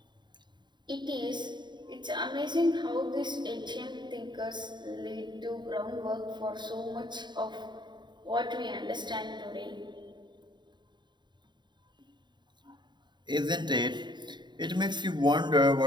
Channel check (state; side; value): late; left; 0.22 ms